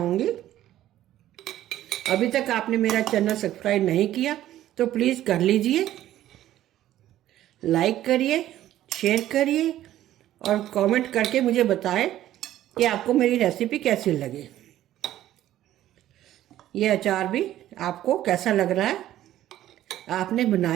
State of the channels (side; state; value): left; quieter; 13.2 dB